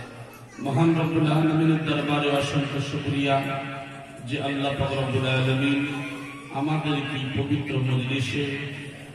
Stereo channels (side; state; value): both; identical; correlation 1.00